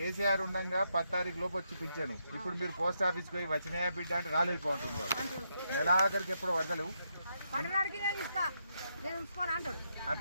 ఉండగా 10 తారీఖు లోపు వచ్చి పింఛను. ఇప్పుడు మీరు పోస్ట్ ఆఫీస్కి పోయి వచ్చినాయా బిడ్డ అంటే రాలేదు పోంటుంది వాడు. నెలాఖరికి ఎప్పుడు వదలవు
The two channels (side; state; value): both; inverted; correlation -0.80